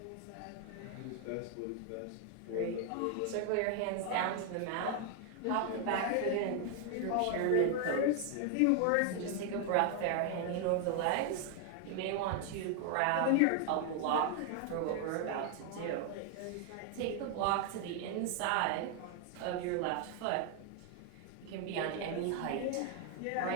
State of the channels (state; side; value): different; both; correlation 0.00